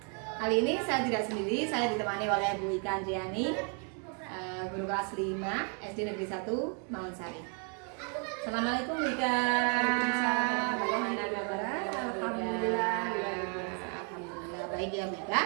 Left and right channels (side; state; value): left; quieter; 39.8 dB